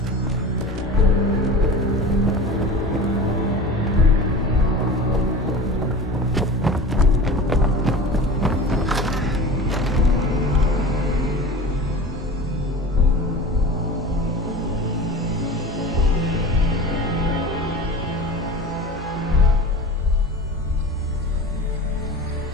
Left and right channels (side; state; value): both; normal; correlation 0.35